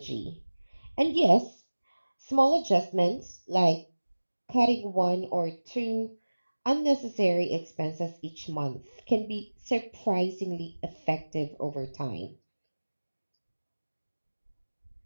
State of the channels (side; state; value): both; inverted; correlation -1.00